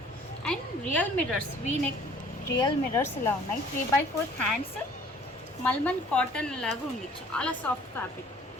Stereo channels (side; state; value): both; normal; correlation 0.54